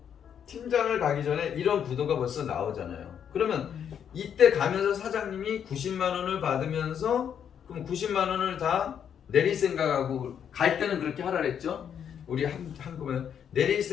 이런 구도가 벌써 나오잖아요. 그러면 이때 가면서 사장님이 90만 원을 받으면서 그럼 90만 원을 다 내릴 생각하고 갈 때는 그렇게 하라 그랬죠. 우리 한국은 내릴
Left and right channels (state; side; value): quieter; right; 8.4 dB